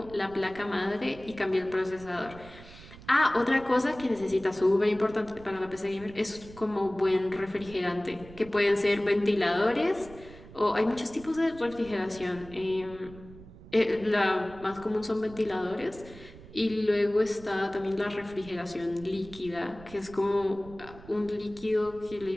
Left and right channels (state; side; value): noise; right; rumble, 18 dB below the sound